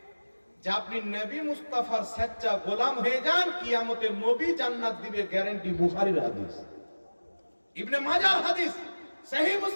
যে আপনি নবী মুস্তাফার সচ্চা গোলাম হয়ে যান, কিয়ামতে নবী জান্নাত দিবে, গ্যারান্টি। বুখারীর হাদিস, ইবনে মাজাহর হাদিস, সহিহ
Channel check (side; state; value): both; inverted; correlation -1.00